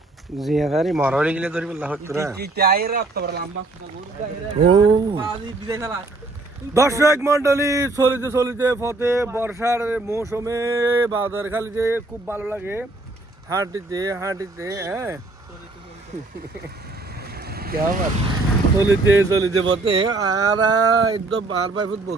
জিয়াদারি মরা গেলে ধরবি না হচ্ছে দর্শক মন্ডলী চলিতে পথে বর্ষার মৌসুমে বাজার খালিতে খুব ভালো লাগে হাঁটিতে হ্যাঁ চলিতে পথে আর একদম 12 ফুট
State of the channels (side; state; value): left; quieter; 3.1 dB